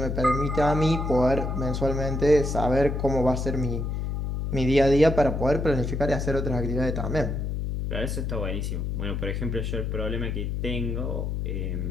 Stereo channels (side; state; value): left; noise; hum, 2 dB below the sound